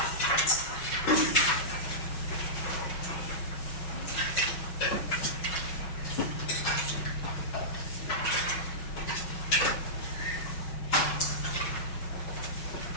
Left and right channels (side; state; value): right; late; 6.0 ms